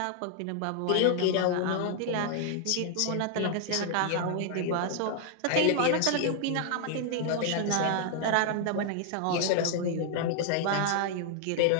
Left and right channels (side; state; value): both; different; correlation 0.00